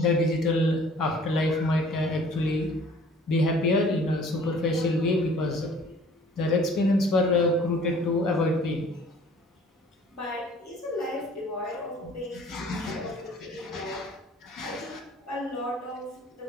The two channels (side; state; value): both; normal; correlation 0.52